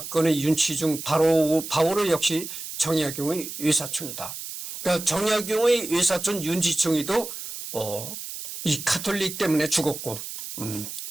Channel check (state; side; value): noise; right; hiss, 9 dB below the sound